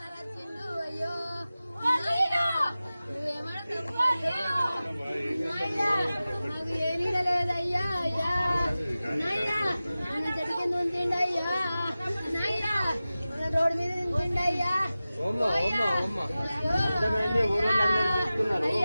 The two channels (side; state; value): both; inverted; correlation -0.96